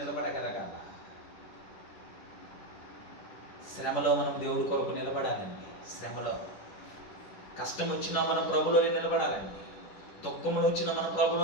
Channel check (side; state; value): right; late; 10 ms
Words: శ్రమలో మనం దేవుడి కొరకు నిలబడాలండి. శ్రమలో కష్టం వచ్చినా మనం ప్రభులోనే నిలబడాలండి. దుఃఖములు వచ్చినా మనం